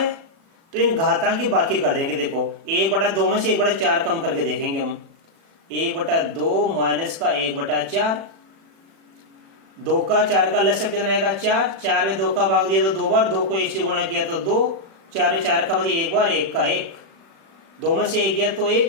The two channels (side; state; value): left; late; 36 ms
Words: तो इन घातांक की बाकी कर देंगे। देखो 1/2 में से 1/4 कम करके देखेंगे हम, 1/2 माइनस का 1/4। 2 का 4 का लसब कितना आएगा, 4। 4 में 2 का भाग दिया तो 2 बार, 2 को 1 से गुणा किया तो 2, 4 में 4 का भाग 1 बार, 1 का 1, 2 में से 1 गया तो